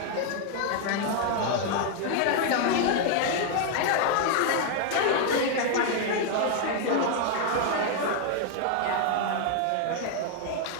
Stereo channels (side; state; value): both; different; correlation 0.00